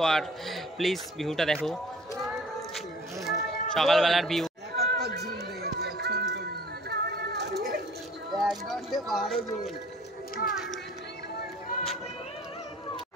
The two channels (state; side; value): normal; both; correlation 0.50